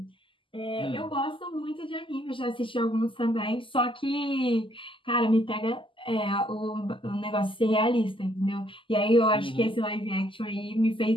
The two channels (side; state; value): right; late; 0.25 ms